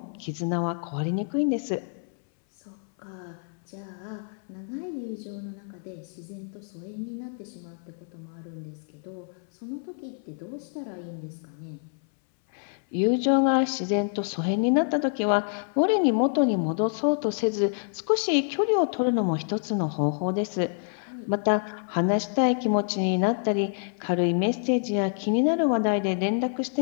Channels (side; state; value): right; silent; 59 dB below the other